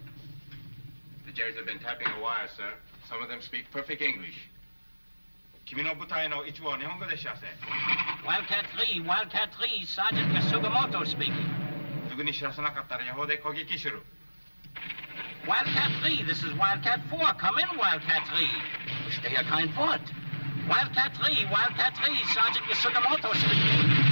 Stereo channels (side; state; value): both; inverted; correlation -1.00